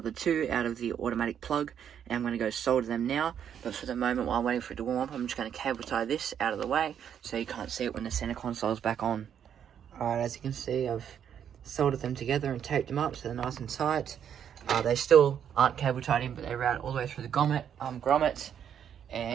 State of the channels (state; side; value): quieter; left; 8.8 dB